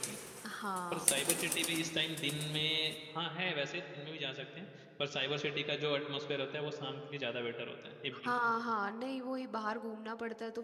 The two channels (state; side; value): identical; both; correlation 1.00